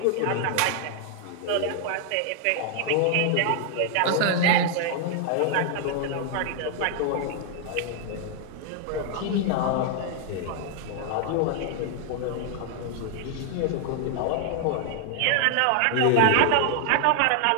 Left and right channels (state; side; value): different; both; correlation 0.00